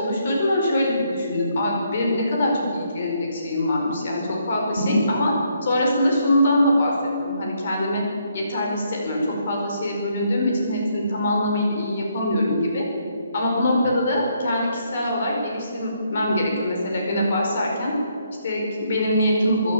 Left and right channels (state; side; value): inverted; both; correlation -0.73